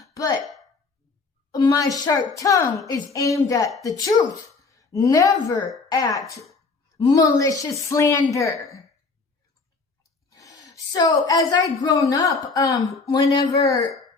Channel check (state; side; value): quieter; right; 4.2 dB